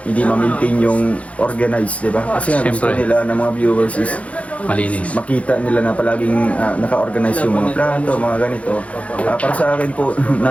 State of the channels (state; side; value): late; right; 0.065 ms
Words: hindi ma-maintain yung organized, di ba? Kasi nga gusto Siyempre. nila ng mga viewers is Malinis. makita nila na palaging naka-organize yung mga plato, mga ganito. Para sa akin po,